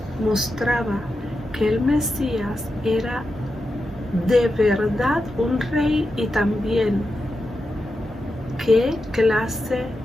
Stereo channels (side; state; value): both; normal; correlation 0.89